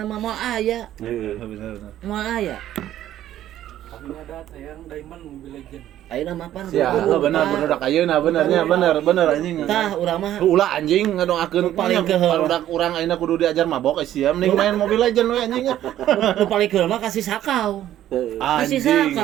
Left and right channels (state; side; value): quieter; left; 12.4 dB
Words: mah moal aya bener moal aya kami ada tayang Diamond Mobile Legend ayeuna mah pan bener budak ayeuna bener anjing tah urang mah ulah anjing ngadongakeun paling budak urang ayeuna kudu diajar mabok sia mending main Mobile Legend we anjing nu paling keur mah kasih sakau anjing